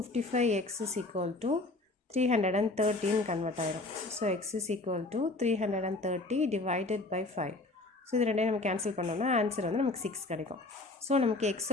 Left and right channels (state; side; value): quieter; right; 3.0 dB